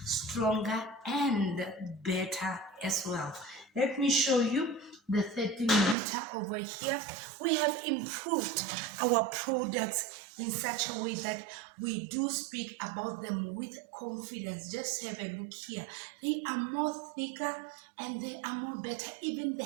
stronger and better as well. Let me show you the 13 liter over here. We have improved our products in such a way that we do speak about them with confidence. Just have a look here. They are more thicker and they are more better. Even the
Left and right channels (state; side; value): drops out; left; at 6.0 s